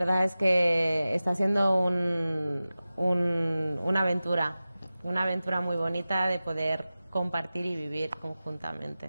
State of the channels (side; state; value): both; inverted; correlation -0.96